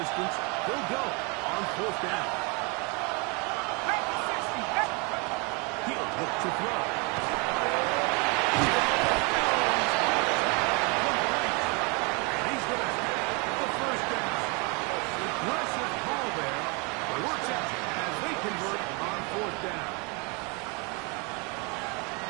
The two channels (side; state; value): left; quieter; 31.6 dB